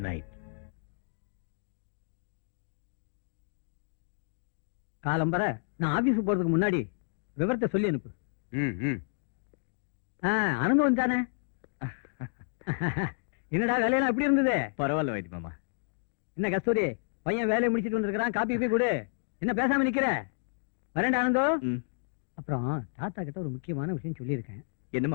நைட். காலம்பர நான் ஆபீஸ் போறதுக்கு முன்னாடி விவரத்தை சொல்லி அனுப்பு. ஆனந்தம் வந்தானே? என்னடா வேலையெல்லாம் எப்படி இருந்தது? பரவாயில்ல வைத்தி மாமா. என்ன கஸ்தூரி, பையன் வேலையை முடிச்சிட்டு வந்திருக்கான், காப்பி போய் கொடு. என்ன பேசாம நிக்கிற? வரேன்டா ஆனந்தம். ம். அப்புறம் தாத்தா கிட்ட ஒரு முக்கியமான விஷயம் சொல்லியிருக்கேன், என்ன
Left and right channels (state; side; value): silent; right; digital silence